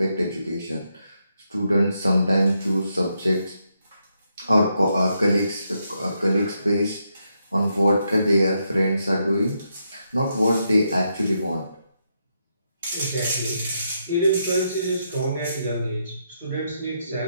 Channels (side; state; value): both; inverted; correlation -0.80